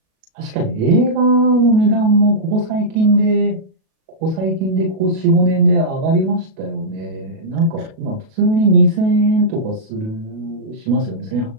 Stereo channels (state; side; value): late; left; 37 ms